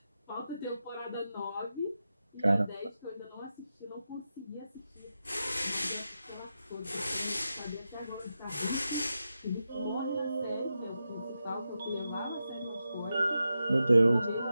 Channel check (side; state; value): both; inverted; correlation -0.89